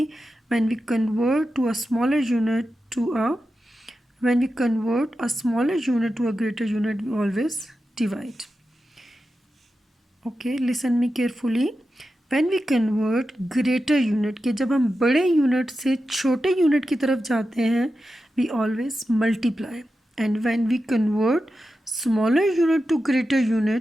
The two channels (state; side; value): normal; both; correlation 0.91